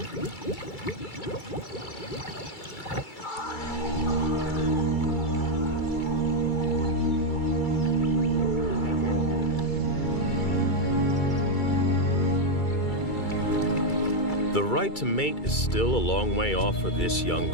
The right to mate is still a long way off for this young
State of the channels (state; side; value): late; right; 2.3 ms